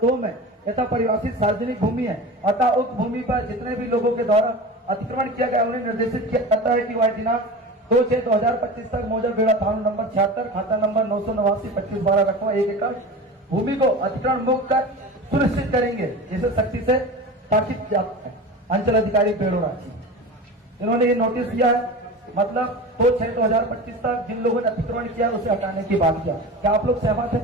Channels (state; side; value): normal; both; correlation 0.31